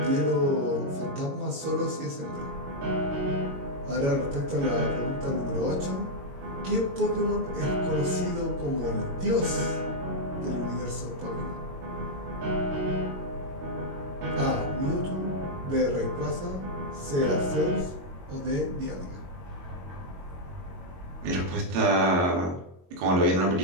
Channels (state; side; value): late; left; 22 ms